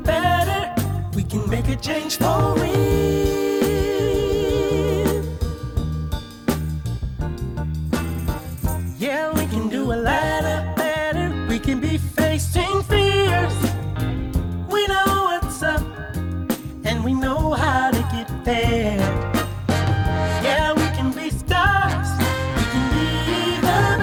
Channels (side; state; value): both; identical; correlation 1.00